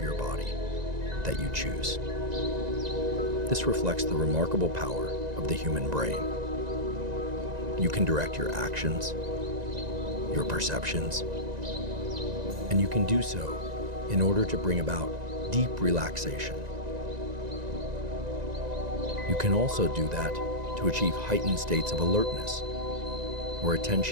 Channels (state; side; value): late; left; 1.9 ms